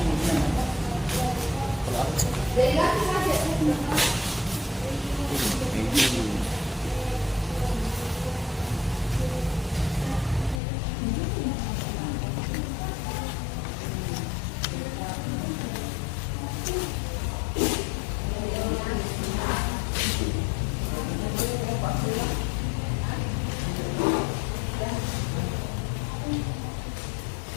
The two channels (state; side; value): drops out; right; at 10.6 s